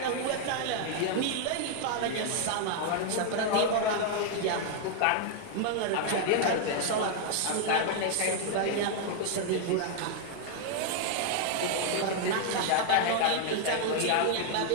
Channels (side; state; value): both; different; correlation 0.00